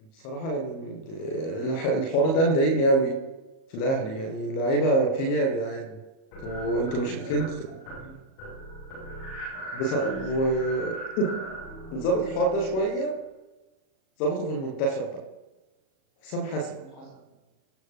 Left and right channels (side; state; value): right; late; 37 ms